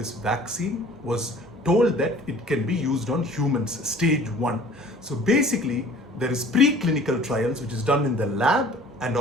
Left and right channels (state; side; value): normal; both; correlation 0.49